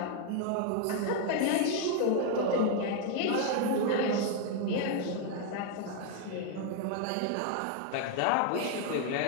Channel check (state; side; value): different; both; correlation 0.00